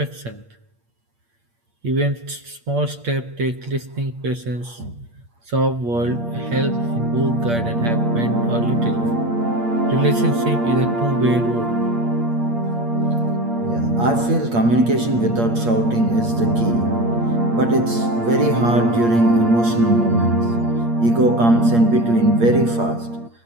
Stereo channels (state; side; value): late; left; 8.6 ms